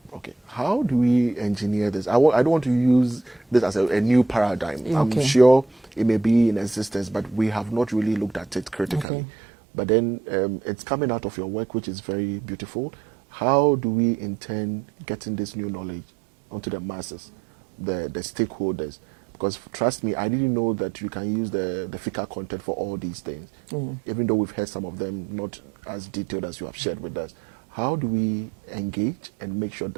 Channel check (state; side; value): drops out; left; at 9.1 s